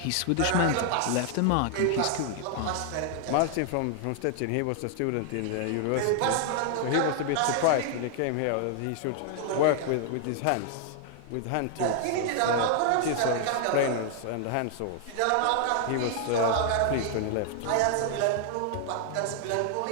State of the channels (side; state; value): both; different; correlation 0.00